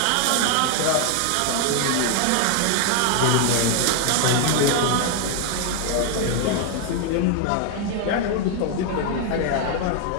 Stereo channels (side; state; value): both; different; correlation 0.00